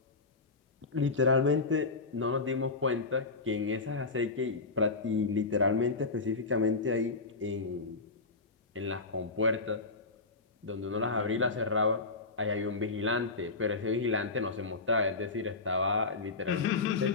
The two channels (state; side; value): quieter; right; 3.8 dB